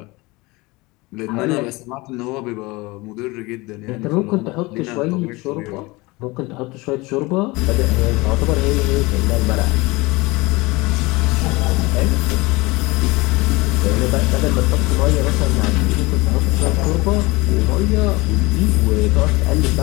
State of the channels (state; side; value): quieter; right; 23.3 dB